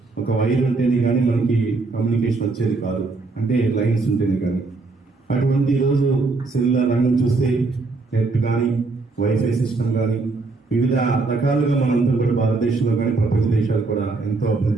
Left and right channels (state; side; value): quieter; left; 3.7 dB